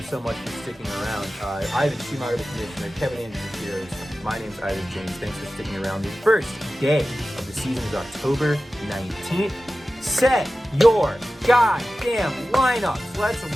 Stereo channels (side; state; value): both; normal; correlation 0.95